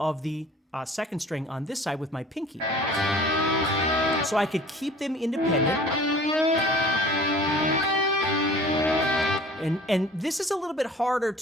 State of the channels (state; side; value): normal; both; correlation 0.46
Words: the second string on this side with my pinky. So I could keep them independent. And this is a little bit harder